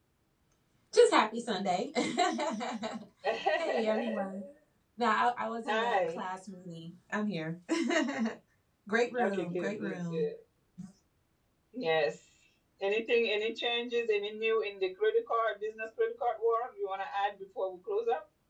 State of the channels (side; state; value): both; identical; correlation 1.00